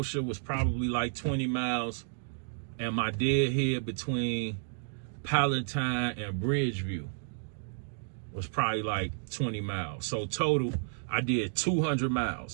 was probably like 20 miles. And my deadhead between Palatine and Bridgeview was probably like 20 miles. So total, I did 200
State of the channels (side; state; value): left; silent; digital silence